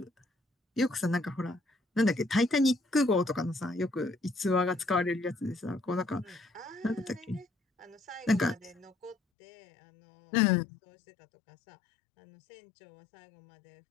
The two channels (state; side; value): drops out; right; at 9.2 s